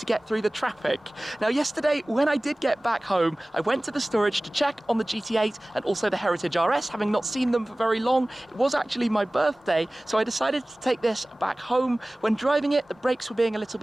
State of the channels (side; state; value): both; normal; correlation 0.98